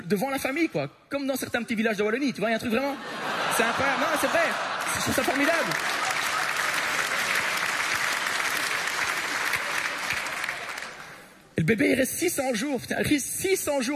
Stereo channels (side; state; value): both; identical; correlation 1.00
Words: devant la famille, quoi. Comme dans certains petits villages de Wallonie, tu vois, il y a un truc vraiment... C'est incroyable, non, c'est vrai, je trouve ça formidable. Et le bébé, il reste 600 jours, putain, il reste 600